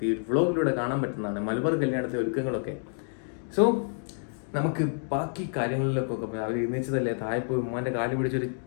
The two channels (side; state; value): right; silent; 59 dB below the other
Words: ഈ വ്ലോഗിലൂടെ കാണാൻ പറ്റുന്നതാണ്, മലബാർ കല്യാണത്തിന്റെ ഒരുക്കങ്ങളൊക്കെ. സോ നമുക്ക് ബാക്കി കാര്യങ്ങളിലൊക്കെ അവർ എഴുന്നേച്ചതല്ലേ, താഴെ പോയി ഉമ്മാന്റെ കാല് പിടിച്ചൊരു